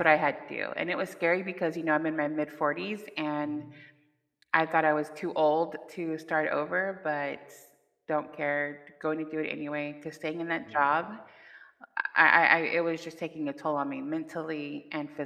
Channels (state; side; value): identical; both; correlation 1.00